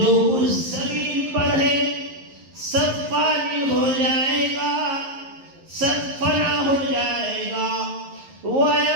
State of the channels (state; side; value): late; left; 11 ms